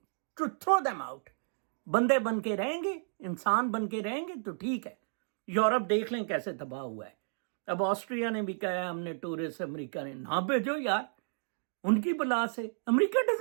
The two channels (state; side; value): silent; left; digital silence